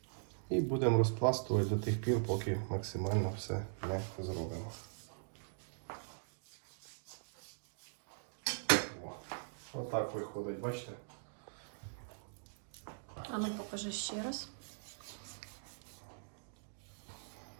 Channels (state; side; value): silent; left; digital silence